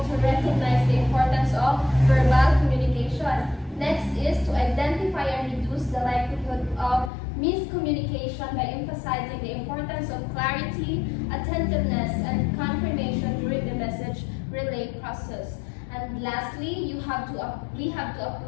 to recognize the importance of verbal communication. Next is to identify and reduce the likelihood of miscommunication by emphasizing the importance of clarity, attentiveness, and confirmation during the message relay process. And lastly, we have to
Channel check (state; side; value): drops out; right; at 7.1 s